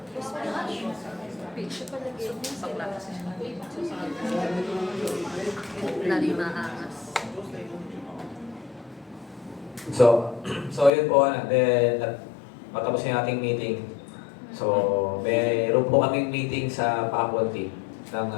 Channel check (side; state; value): right; drops out; at 10.9 s